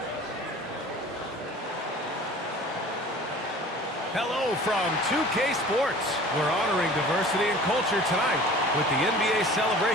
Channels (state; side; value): normal; both; correlation 0.44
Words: Hello from 2K Sports. We're honoring diversity and culture tonight with the NBA